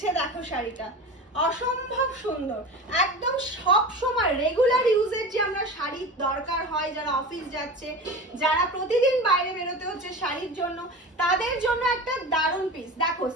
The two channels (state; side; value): normal; both; correlation 0.31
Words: দেখো শাড়িটা, অসম্ভব সুন্দর। একদম সব সময় রেগুলার ইউজের যে আমরা শাড়ি দরকার হয়, যারা অফিস যাচ্ছে, যারা প্রতিদিন বাইরে বেরোতে হচ্ছে শাড়ির জন্য, তাদের জন্য একটা দারুণ পিস। দেখো